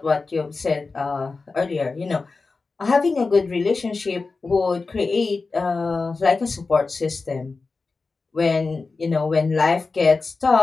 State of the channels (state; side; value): quieter; right; 4.0 dB